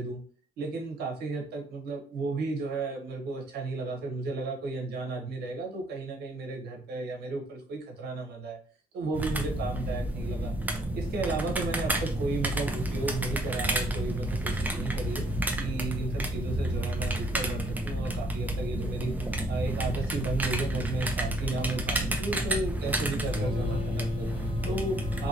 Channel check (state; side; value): normal; both; correlation 0.64